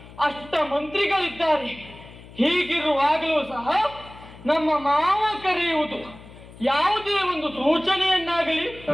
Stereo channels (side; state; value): left; noise; hum, 19 dB below the sound